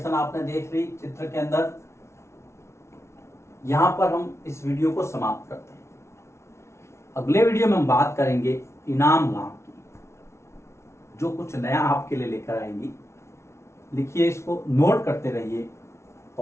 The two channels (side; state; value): right; late; 0.13 ms